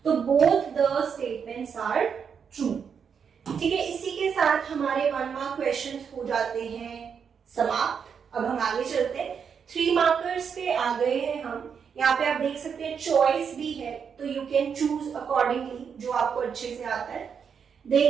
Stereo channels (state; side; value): quieter; left; 6.8 dB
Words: तो both the statements are true. ठीक है, इसी के साथ हमारे 1 mark questions हो जाते हैं समाप्त। अब हम आगे चलते हैं। 3 markers पे आ गए हैं हम। यहाँ पे आप देख सकते हैं चॉइस भी है, तो you can choose accordingly जो आपको अच्छे से आता है।